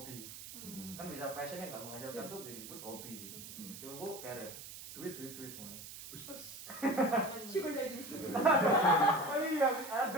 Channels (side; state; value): right; noise; hiss, 12 dB below the sound